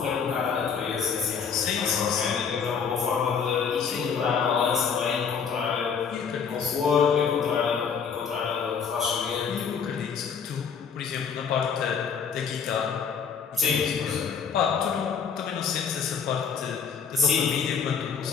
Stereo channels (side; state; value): right; quieter; 6.5 dB